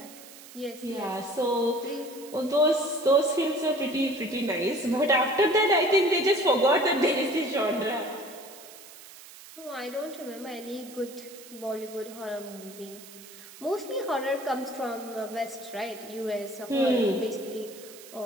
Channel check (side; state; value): right; noise; hiss, 18 dB below the sound